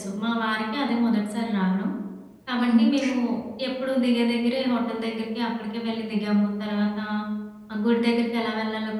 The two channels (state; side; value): identical; both; correlation 1.00